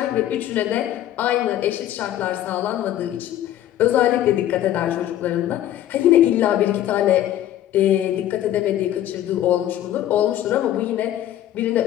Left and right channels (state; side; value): quieter; right; 12.4 dB